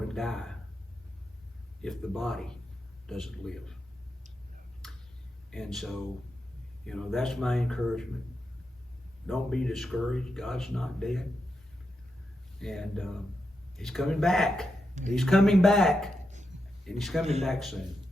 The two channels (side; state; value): both; normal; correlation 0.86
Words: to die if the body doesn't live. And so, that's my encouragement. Don't be discouraged. God's not dead. And He's coming back. He's coming back. And He's coming back soon.